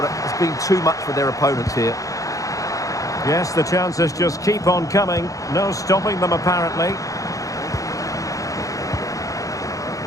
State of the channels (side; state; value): right; late; 0.16 ms